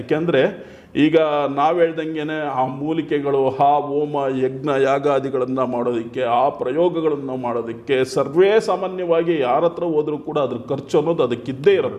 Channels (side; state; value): both; identical; correlation 1.00